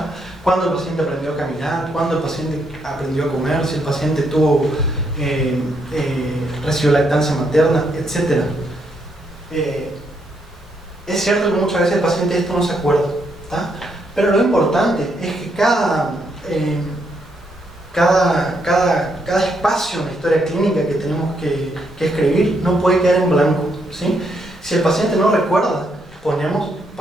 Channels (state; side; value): normal; both; correlation 0.76